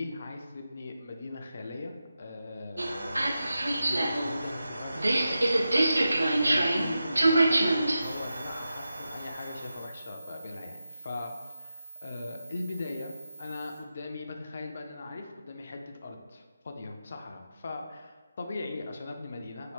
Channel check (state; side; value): inverted; both; correlation -0.91